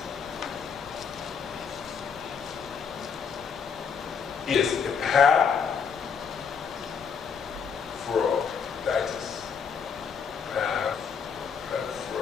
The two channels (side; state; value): right; quieter; 6.4 dB